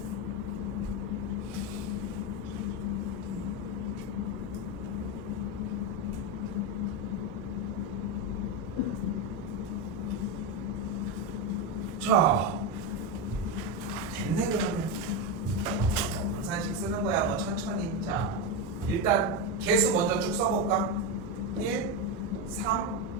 자, 됐네. 그러면 분산식 쓰는 거야. 뭐 천천히. 자, 일단 개수 먼저 쭉 써볼까? 1, 3,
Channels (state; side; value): normal; both; correlation 0.12